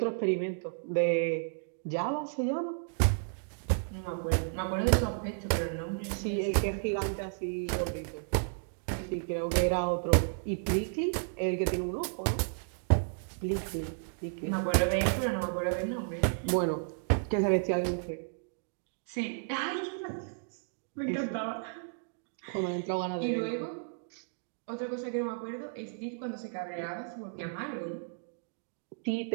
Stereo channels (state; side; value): silent; left; digital silence